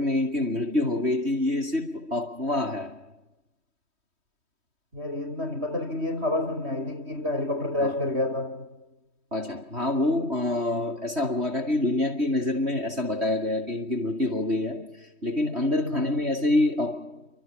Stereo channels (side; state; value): left; late; 3.1 ms